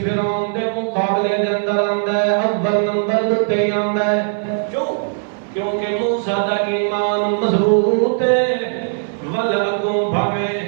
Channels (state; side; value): silent; left; 58 dB below the other